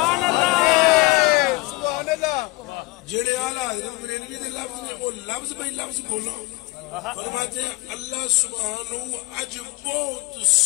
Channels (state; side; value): quieter; right; 22.5 dB